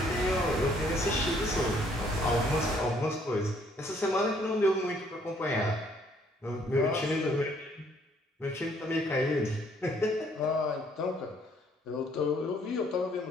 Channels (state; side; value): normal; both; correlation 0.64